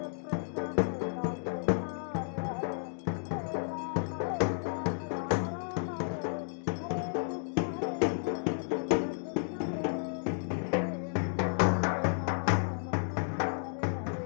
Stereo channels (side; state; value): right; silent; digital silence